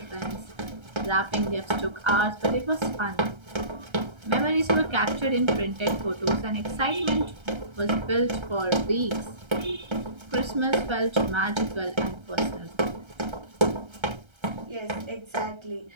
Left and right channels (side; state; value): left; late; 1.3 ms